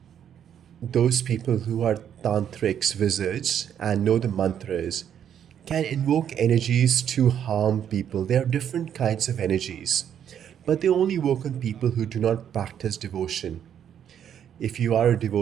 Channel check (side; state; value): left; quieter; 9.2 dB